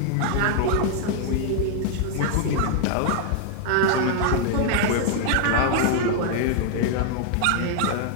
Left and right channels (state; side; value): different; both; correlation 0.00